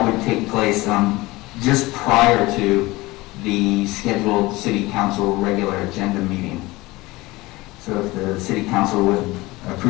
would take place just prior to the scheduled City Council regular agenda meeting. So if the City Council would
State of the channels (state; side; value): quieter; right; 20.7 dB